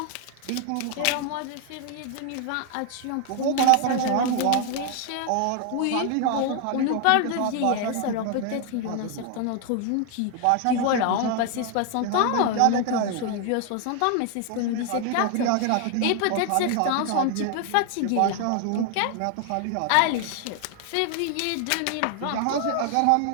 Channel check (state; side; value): different; both; correlation 0.00